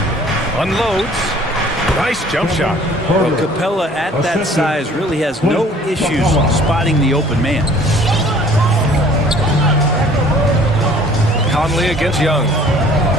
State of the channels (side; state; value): both; normal; correlation 0.53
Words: Unloads. Nice jump shot. Well, Capella at that size really has no issues spotting the open man. Conley against Young.